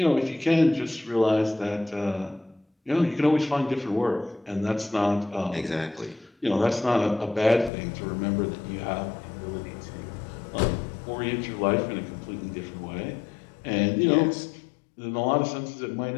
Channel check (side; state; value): right; drops out; at 7.7 s